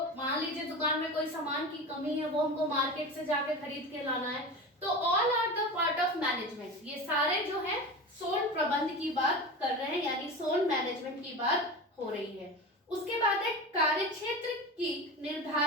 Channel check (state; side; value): normal; both; correlation 0.28